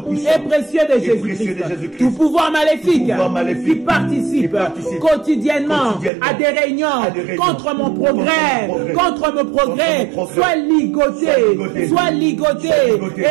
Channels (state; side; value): drops out; left; at 6.1 s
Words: et précieux de Jésus-Christ. Tout pouvoir maléfique qui participe quotidiennement à des réunions contre mon progrès, soit ligoté